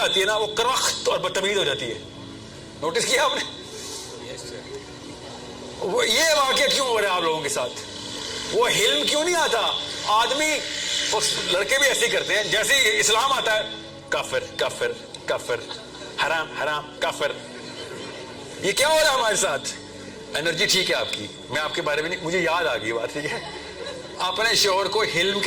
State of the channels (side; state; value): both; identical; correlation 1.00